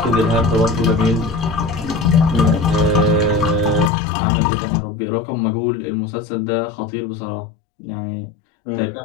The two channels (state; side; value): drops out; right; at 3.9 s